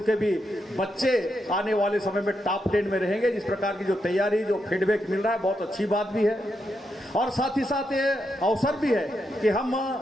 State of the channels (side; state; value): both; normal; correlation 0.83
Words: के भी बच्चे आने वाले समय में टॉप 10 में रहेंगे। जिस प्रकार की जो तैयारी जो फीडबैक मिल रहा है बहुत अच्छी बात भी है। और साथ ही साथ ये अवसर भी है कि हम